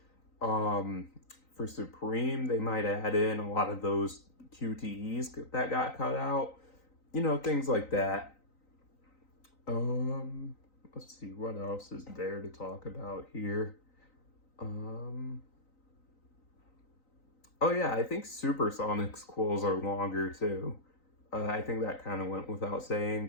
For Supreme, they might add in a lot of those QTEs that got cut out. Things like that. Let's see, what else is there to talk about here? Oh yeah, I think Supersonic's quills are longer too. I think that kind of went without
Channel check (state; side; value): late; right; 3.9 ms